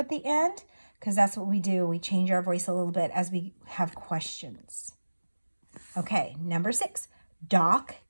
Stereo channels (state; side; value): inverted; both; correlation -1.00